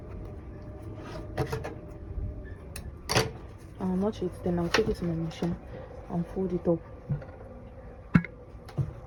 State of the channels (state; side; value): identical; both; correlation 1.00